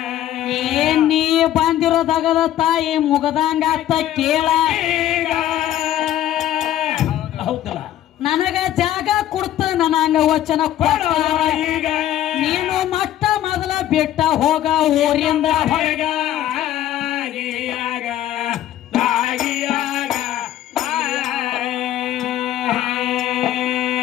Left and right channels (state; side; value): quieter; right; 12.4 dB